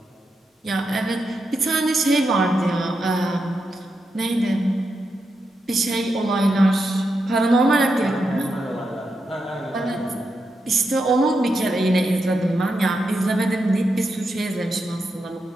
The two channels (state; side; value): normal; both; correlation 0.86